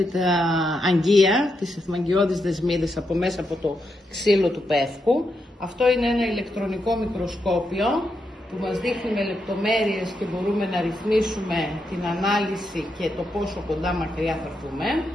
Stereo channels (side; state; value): both; normal; correlation 0.83